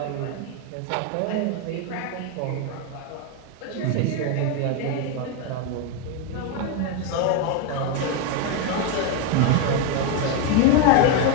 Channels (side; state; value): both; different; correlation 0.01